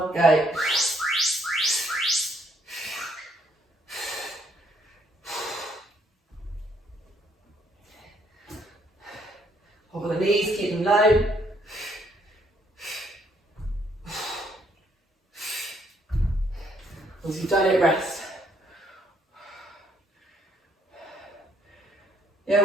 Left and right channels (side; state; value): both; normal; correlation 0.69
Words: go. Hover the knees, keep them low. Once you've done it, rest. Yeah,